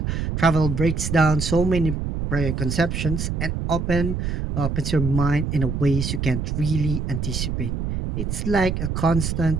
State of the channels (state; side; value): noise; right; rumble, 2 dB below the sound